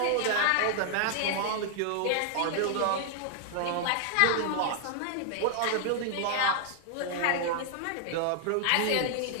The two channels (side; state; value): both; different; correlation 0.00